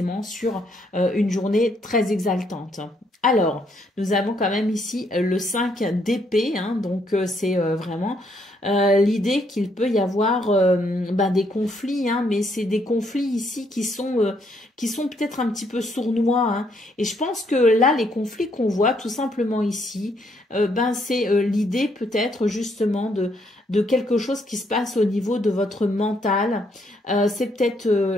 sur une journée très exaltante. Alors, nous avons quand même ici le 5 d'épée, hein, donc c'est vraiment l'idée qu'il peut y avoir ben, des conflits, hein, mais c'est des conflits ici qui sont peut-être un petit peu sournois. Hein. Et je pense que là, les conflits qu'on voit tout simplement ici, ben, c'est l'idée peut-être justement de quelque chose qui se passe au niveau de votre mental. C'est peut-être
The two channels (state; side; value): normal; both; correlation 0.72